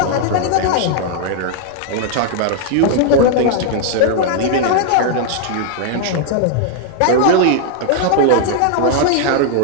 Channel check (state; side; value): different; both; correlation 0.00